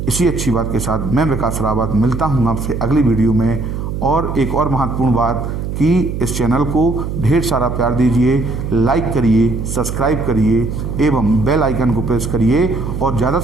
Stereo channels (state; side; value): noise; right; hum, 4 dB below the sound